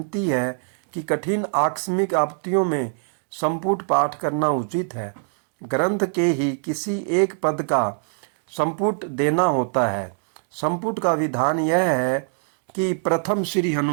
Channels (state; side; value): silent; left; 63 dB below the other